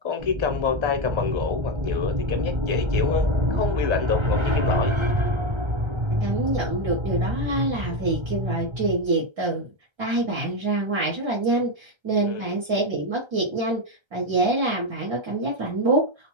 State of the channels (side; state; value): left; late; 1.3 ms